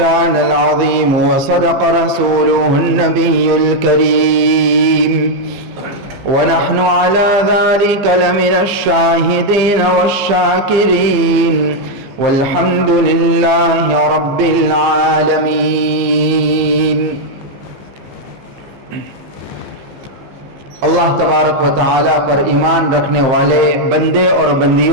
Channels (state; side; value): late; left; 15 ms